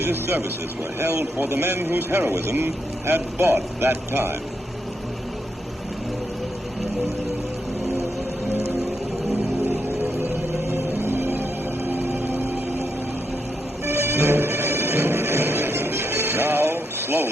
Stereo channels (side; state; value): both; normal; correlation 0.81